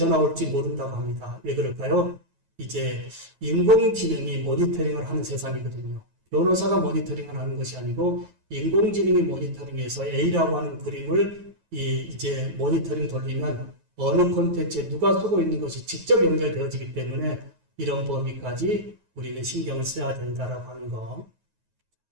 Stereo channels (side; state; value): left; late; 9.3 ms